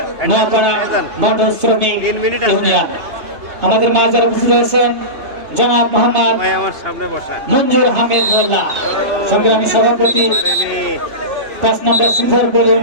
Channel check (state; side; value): late; left; 3.3 ms